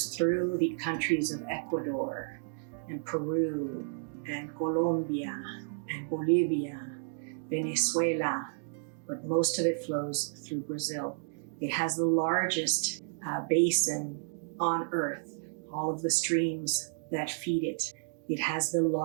through the countries of Ecuador and Peru and Colombia and Bolivia, Venezuela, but most of it flows through Brazil. It has the largest basin on earth, all of the streams that feed it. It has the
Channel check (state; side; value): silent; left; digital silence